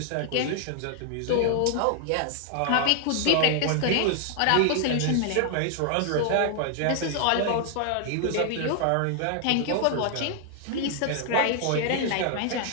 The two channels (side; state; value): both; different; correlation 0.00